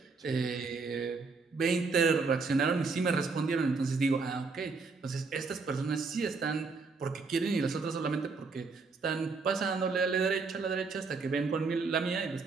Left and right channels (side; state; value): left; quieter; 4.4 dB